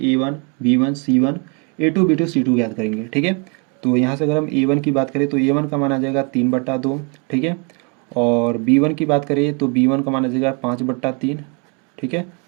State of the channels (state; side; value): quieter; left; 33.8 dB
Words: B1 C1 A2 B2 C2 याद करेंगे। ठीक है, तो यहाँ से अगर हम A1 की बात करें तो A1 का मान आ जाएगा 3/2। ठीक है, और B1 की बात करें तो B1 का मान आ जाएगा 5/3। ठीक है,